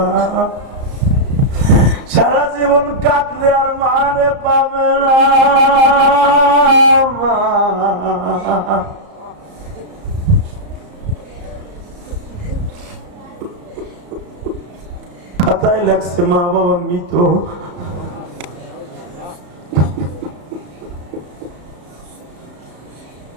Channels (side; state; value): left; late; 34 ms